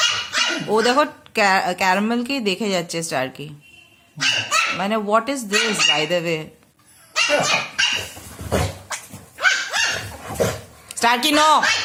ও দেখো ক্যারামেলকেই দেখে যাচ্ছে স্টারকি। মানে what is this by the way? Starky no,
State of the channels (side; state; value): both; identical; correlation 1.00